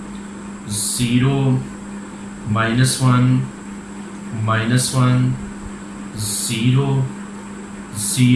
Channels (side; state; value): both; identical; correlation 1.00